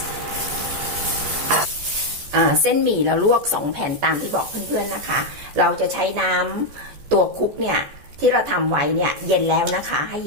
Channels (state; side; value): late; left; 14 ms